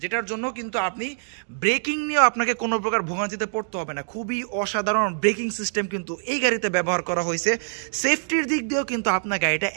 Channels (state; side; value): silent; left; digital silence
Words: যেটার জন্য কিন্তু আপনি ব্রেকিং নিয়েও আপনাকে কোনো প্রকার ভোগান্তিতে পড়তে হবে না। খুবই অসাধারণ ব্রেকিং সিস্টেম কিন্তু এই গাড়িতে ব্যবহার করা হয়েছে। সেফটির দিক দিয়েও কিন্তু আপনার গাড়িটা